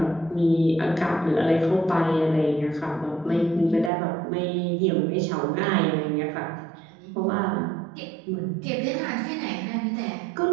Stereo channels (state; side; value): drops out; left; at 3.9 s